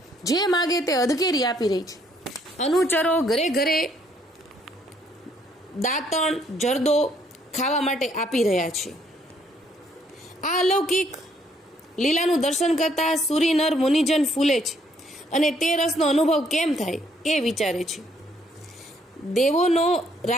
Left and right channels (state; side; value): normal; both; correlation 0.67